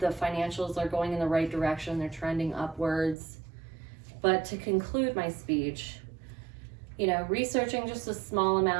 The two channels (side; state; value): left; drops out; at 3.2 s